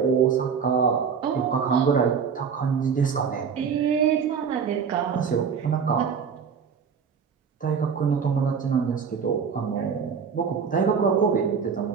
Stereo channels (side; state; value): left; quieter; 6.5 dB